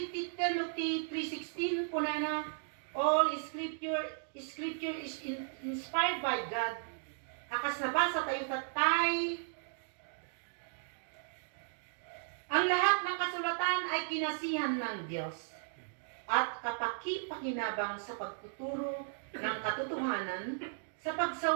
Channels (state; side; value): silent; left; digital silence